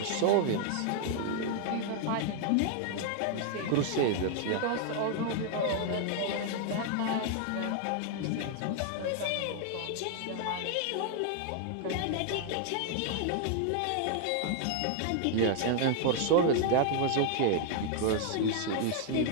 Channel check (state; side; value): different; both; correlation 0.00